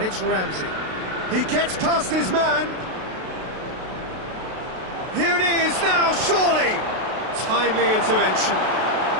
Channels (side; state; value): left; late; 32 ms